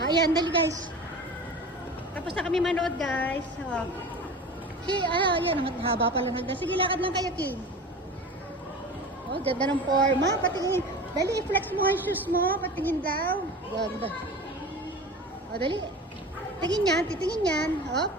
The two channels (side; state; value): both; normal; correlation 0.34